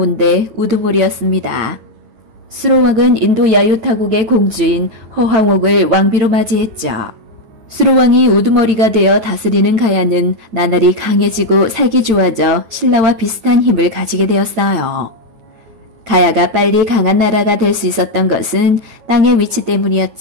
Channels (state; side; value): late; left; 8.9 ms